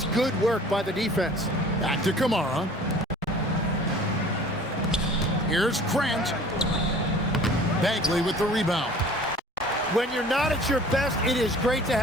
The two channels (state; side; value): normal; both; correlation 0.48